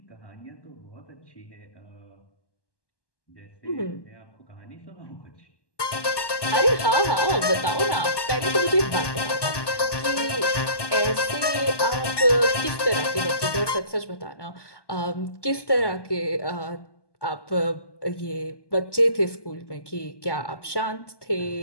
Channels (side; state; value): right; late; 1.2 ms